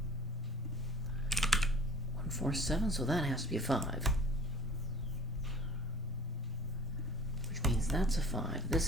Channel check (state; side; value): normal; both; correlation 0.46